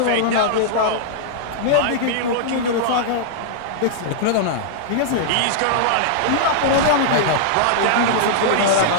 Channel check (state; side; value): different; both; correlation -0.01